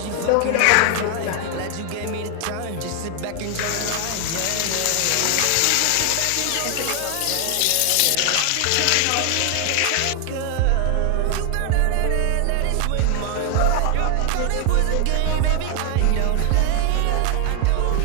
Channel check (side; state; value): both; different; correlation 0.00